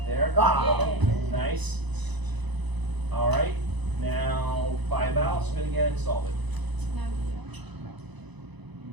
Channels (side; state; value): left; late; 1.0 ms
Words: there. Ah. Nice. All right. Now buy a vowel, spin again, solve it.